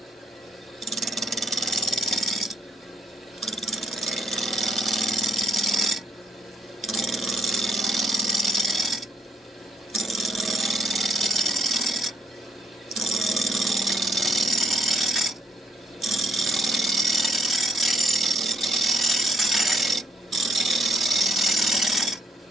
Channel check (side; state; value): both; normal; correlation 0.69